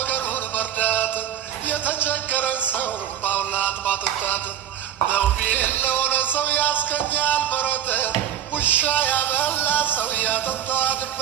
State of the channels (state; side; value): quieter; left; 10.2 dB